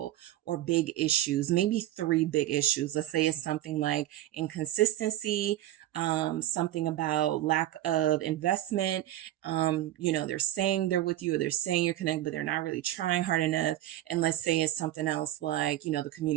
or big issues, maybe 3 big issues. Let's say it's something like inconsistency, something about lack of investment. You know, they're saying they're with you, or they're saying you're connected, but they're not really trying hard enough. And let's say it's something else like, you know, the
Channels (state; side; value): quieter; left; 13.8 dB